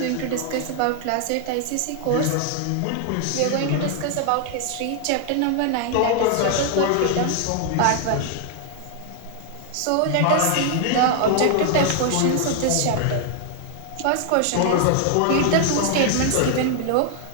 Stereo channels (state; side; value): different; both; correlation 0.00